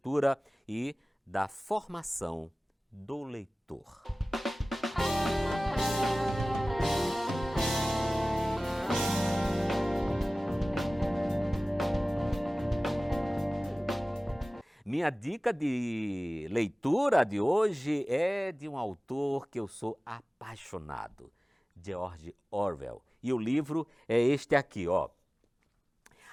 e da formação do leitor. Minha dica de leitura de hoje é de um autor que eu sou apaixonado, George Orwell. E o livro é este aqui, ó,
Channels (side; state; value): both; normal; correlation 0.98